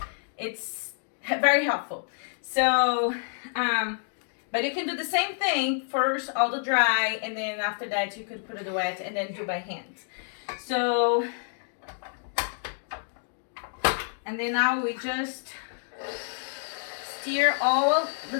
It's very helpful. So, but you can do the same thing. First, all the dry, and then after that, you could put it wet and then do by hand. So, and then now we just stir all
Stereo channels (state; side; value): silent; right; digital silence